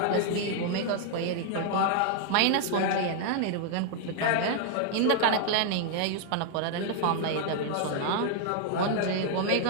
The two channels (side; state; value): both; different; correlation 0.00